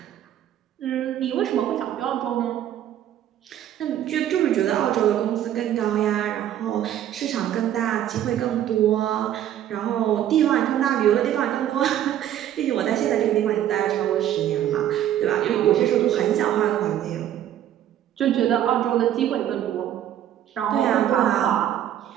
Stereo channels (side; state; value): left; quieter; 11.2 dB